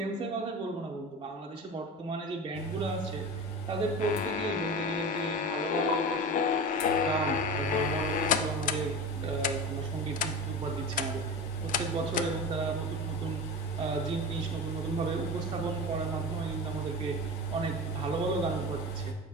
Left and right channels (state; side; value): normal; both; correlation 0.29